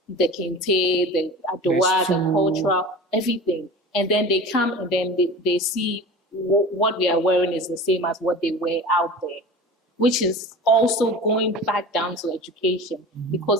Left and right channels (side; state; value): both; normal; correlation 0.35